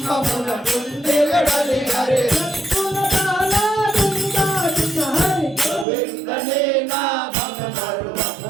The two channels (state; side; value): drops out; left; at 5.9 s